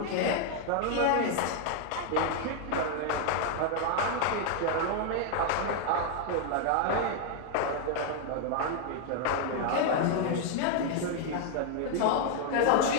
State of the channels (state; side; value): different; both; correlation 0.00